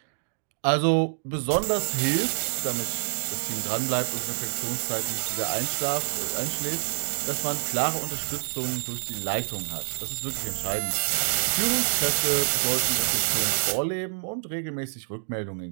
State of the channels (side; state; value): left; silent; digital silence